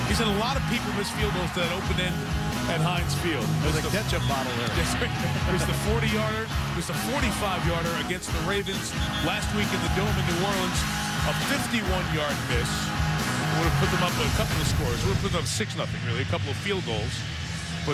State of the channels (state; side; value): identical; both; correlation 1.00